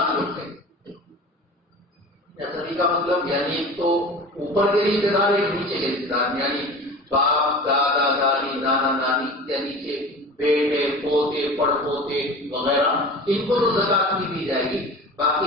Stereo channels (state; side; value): normal; both; correlation 0.37